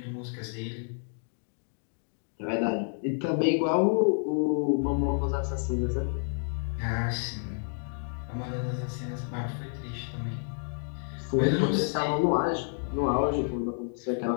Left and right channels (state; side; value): silent; right; digital silence